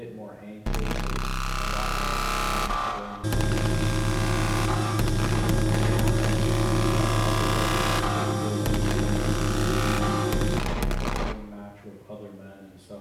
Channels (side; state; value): both; identical; correlation 1.00